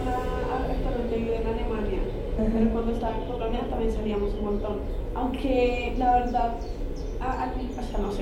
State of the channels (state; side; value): identical; both; correlation 1.00